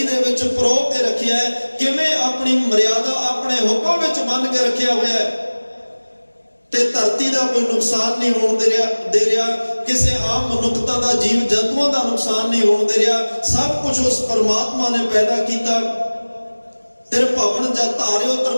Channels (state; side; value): inverted; both; correlation -1.00